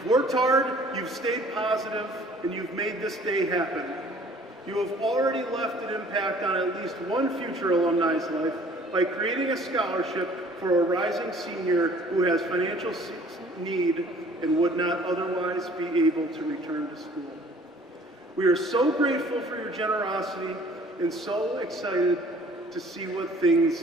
worked hard, you've stayed positive, and you've made this day happen. You have already left an impact on at least one future alumni's life by creating a scholarship for a rising senior who has financial need and would not otherwise be able to return to school. We are so grateful for your generosity and so excited to see what things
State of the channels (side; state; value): both; normal; correlation 0.54